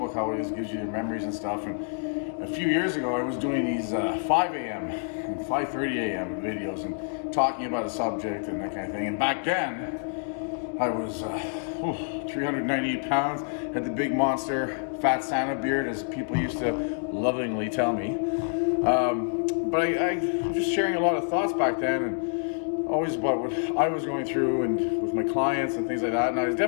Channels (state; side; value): silent; right; digital silence